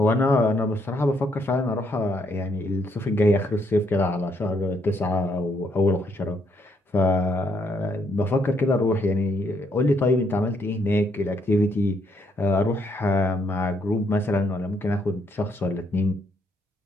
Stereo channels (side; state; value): both; normal; correlation 0.73